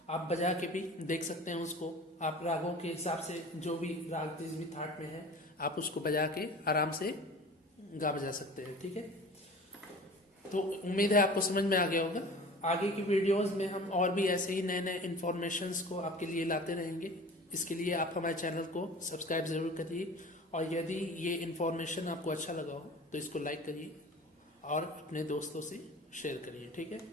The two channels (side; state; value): both; normal; correlation 0.40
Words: आप बजा के भी देख सकते हैं उसको, आप रागों के हिसाब से जो भी राग जिस भी थाट में है आप उसको बजा के आराम से गा बजा सकते हैं, ठीक है। तो उम्मीद है आपको समझ में आ गया होगा। आगे की वीडियोस में हम और भी ऐसे ही नए नए इन्फॉर्मेशंस को आपके लिए लाते रहेंगे। इसके लिए आप हमारे चैनल को सब्सक्राइब जरूर करिए, और यदि ये इन्फॉर्मेशन आपको अच्छा लगा हो तो इसको लाइक करिए और अपने दोस्तों से शेयर करिए, ठीक है।